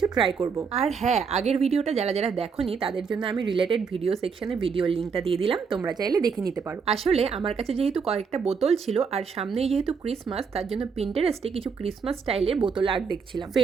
ট্রাই করব। আর হ্যাঁ, আগের ভিডিওটা যারা যারা দেখোনি তাদের জন্য আমি রিলেটেড ভিডিও সেকশনে ভিডিওর লিঙ্কটা দিয়ে দিলাম, তোমরা চাইলে দেখে নিতে পারো। আসলে আমার কাছে যেহেতু কয়েকটা বোতল ছিল আর সামনেই যেহেতু ক্রিসমাস, তার জন্য পিন্টারেস্টে কিছু ক্রিসমাস স্টাইলের বোতল আর্ট দেখছিলাম।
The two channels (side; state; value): left; quieter; 5.8 dB